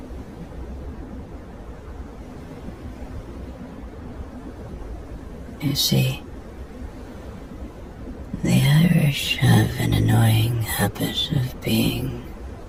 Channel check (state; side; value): identical; both; correlation 1.00